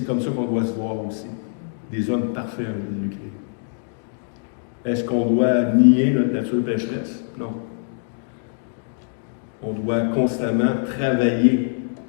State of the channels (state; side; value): silent; right; digital silence